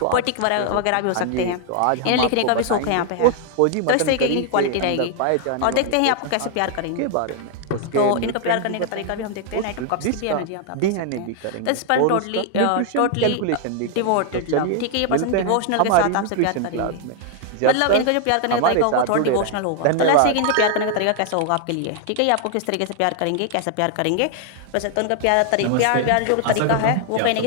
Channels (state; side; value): different; both; correlation 0.00